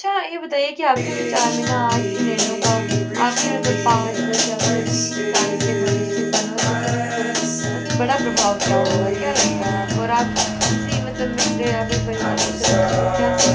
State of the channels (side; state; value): both; identical; correlation 1.00